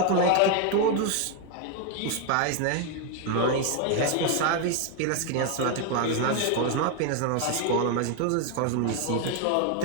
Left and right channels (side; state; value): both; different; correlation 0.01